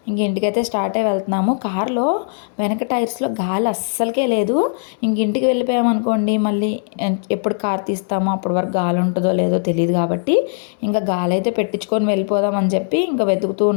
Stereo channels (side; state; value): right; silent; digital silence